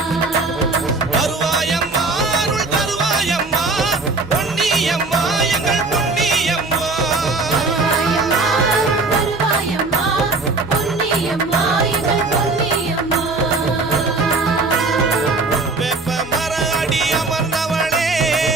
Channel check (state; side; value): quieter; left; 3.6 dB